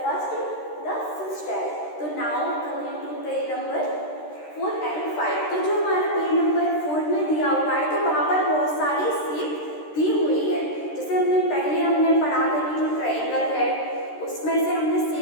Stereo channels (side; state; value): right; late; 13 ms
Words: first the fish tag. तो now coming to page number 4 and 5। तो जो हमारा पेज नंबर 4 में दिया हुआ है तो वहाँ पर बहुत सारी शेप दी हुई है। जैसे हमने पढ़ा था कि जो ट्रायंगल है उसमें से हमने